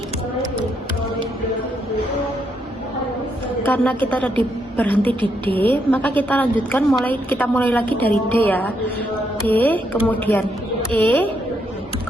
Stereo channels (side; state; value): both; normal; correlation 0.77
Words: Karena kita tadi berhenti di D, maka kita lanjutkan kita mulai lagi dari D ya. D, kemudian E,